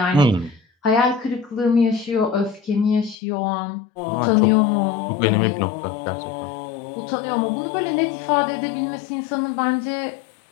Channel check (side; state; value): right; drops out; at 3.2 s